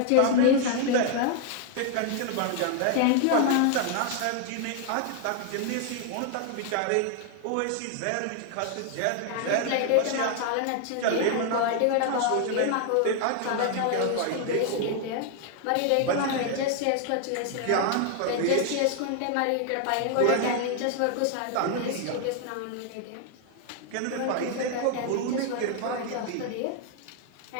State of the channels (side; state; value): both; different; correlation 0.00